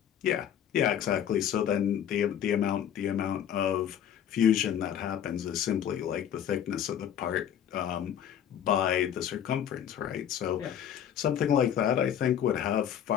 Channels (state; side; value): quieter; right; 9.7 dB